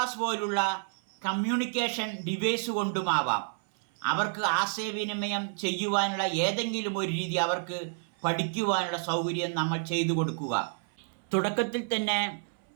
പോലുള്ള കമ്മ്യൂണിക്കേഷൻ ഡിവൈസ് കൊണ്ടുമാവാം. അവർക്ക് ആശയവിനിമയം ചെയ്യുവാനുള്ള ഏതെങ്കിലും ഒരു രീതി അവർക്ക് പഠിക്കുവാനുള്ള സൗകര്യം നമ്മൾ ചെയ്തു കൊടുക്കുക. തുടക്കത്തിൽ തന്നെ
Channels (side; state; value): left; silent; 57 dB below the other